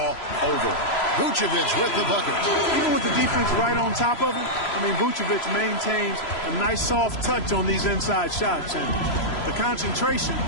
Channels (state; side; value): late; right; 3.0 ms